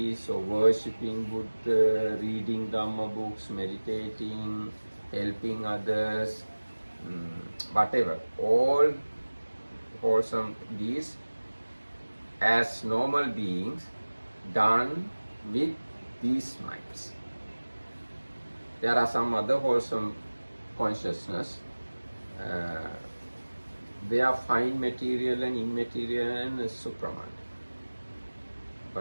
or worshipping Buddha, reading Dhamma books, meditating, helping others, whatever, all wholesome deeds as normal beings done with these minds. There are some other wholesome consciousness. They are fine material and immaterial and supraman.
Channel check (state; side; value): inverted; both; correlation -1.00